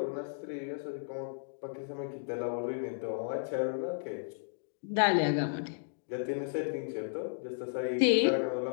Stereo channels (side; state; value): right; silent; digital silence